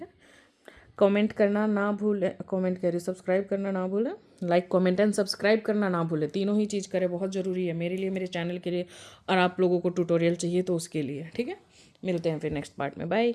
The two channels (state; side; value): identical; both; correlation 1.00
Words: है, कमेंट करना ना भूलें, कमेंट करिए, सब्सक्राइब करना ना भूलें, लाइक कमेंट एंड सब्सक्राइब करना ना भूलें, तीनों ही चीज़ करें, बहुत ज़रूरी है मेरे लिए, मेरे चैनल के लिए, और आप लोगों को ट्यूटोरियल चाहिए तो उसके लिए। ठीक है, मिलते हैं फिर नेक्स्ट पार्ट में, बाय।